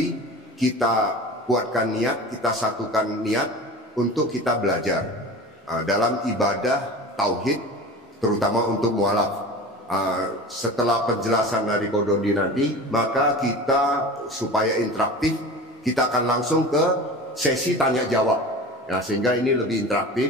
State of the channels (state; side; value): normal; both; correlation 0.35